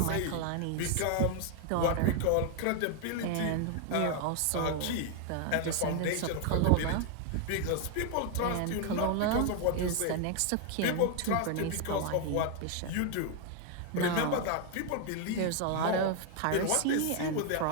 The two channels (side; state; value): both; different; correlation 0.00